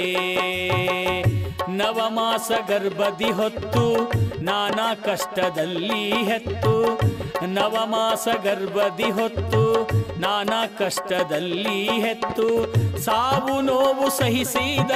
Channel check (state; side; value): identical; both; correlation 1.00